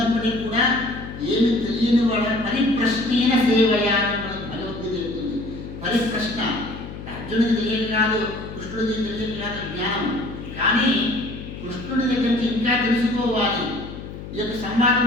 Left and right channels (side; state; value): left; noise; hum, 11 dB below the sound